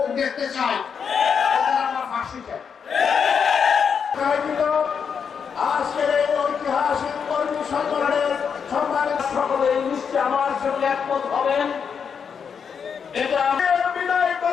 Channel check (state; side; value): quieter; right; 6.7 dB